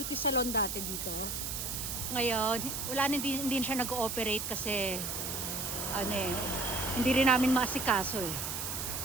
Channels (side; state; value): right; noise; hiss, 4 dB below the sound